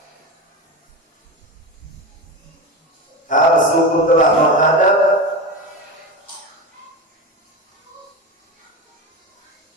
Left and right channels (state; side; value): normal; both; correlation 0.22